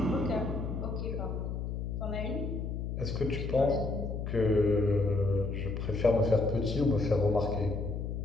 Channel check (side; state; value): left; noise; hum, 4 dB below the sound